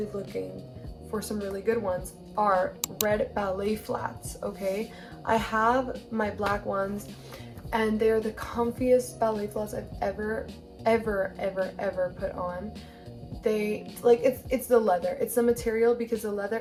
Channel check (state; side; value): identical; both; correlation 1.00